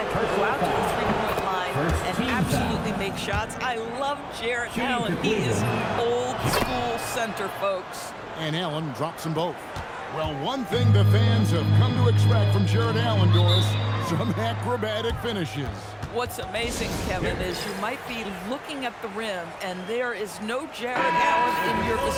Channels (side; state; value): both; identical; correlation 1.00